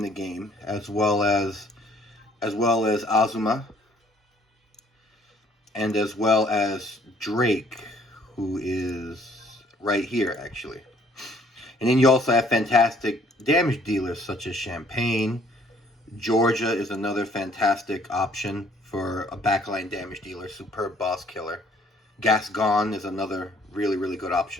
game, as well as Azuma, and as well as Drake, who is right here actually. And then you also have fantastic damage dealers such as Champagne. Georgia is another fantastic option for a backline damage dealer, superb boss killer. Gascon is another really, really good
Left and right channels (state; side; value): normal; both; correlation 0.60